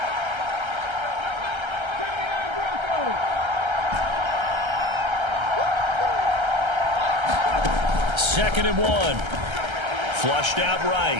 Second and 1. Flushed out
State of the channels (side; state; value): left; late; 1.3 ms